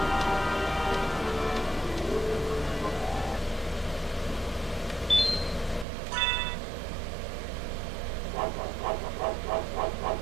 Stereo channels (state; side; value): drops out; left; at 5.9 s